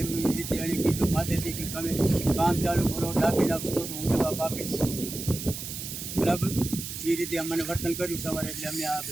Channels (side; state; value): right; noise; hiss, 8 dB below the sound